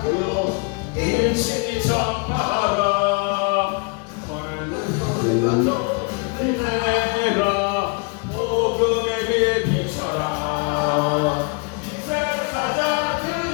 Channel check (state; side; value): quieter; right; 33.4 dB